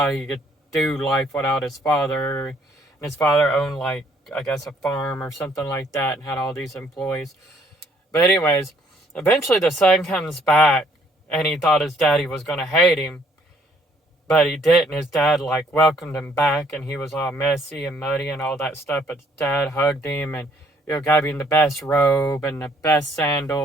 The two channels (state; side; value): normal; both; correlation 0.65